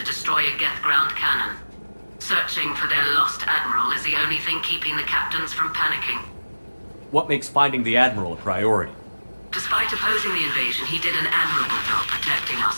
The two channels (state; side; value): inverted; both; correlation -1.00